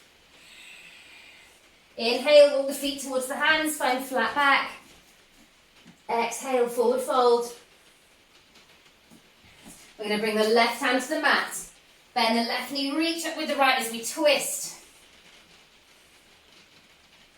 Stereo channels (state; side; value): identical; both; correlation 1.00